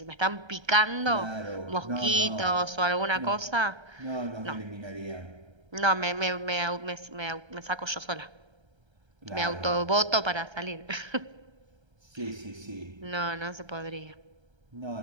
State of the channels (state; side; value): late; left; 1.3 ms